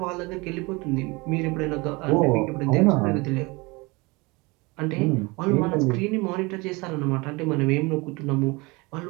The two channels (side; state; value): left; quieter; 25.2 dB